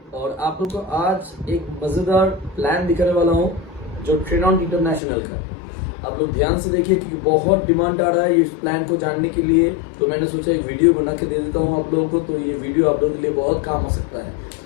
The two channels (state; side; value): drops out; right; at 5.0 s